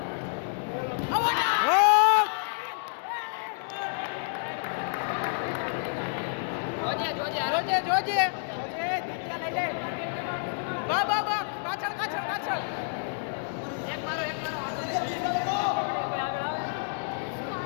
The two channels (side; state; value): right; silent; digital silence